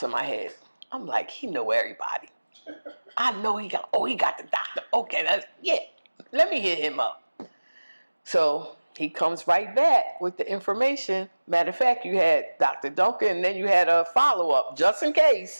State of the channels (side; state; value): both; inverted; correlation -1.00